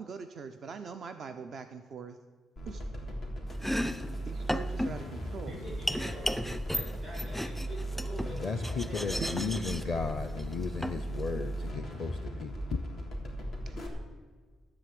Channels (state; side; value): normal; both; correlation 0.85